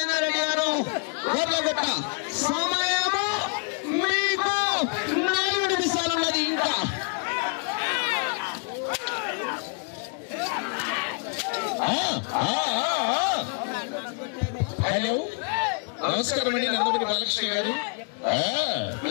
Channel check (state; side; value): quieter; right; 38.8 dB